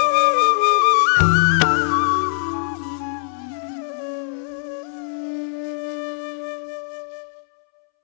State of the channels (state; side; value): silent; right; 65 dB below the other